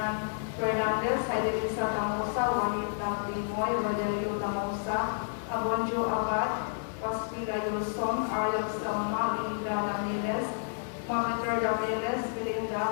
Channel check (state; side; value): silent; right; digital silence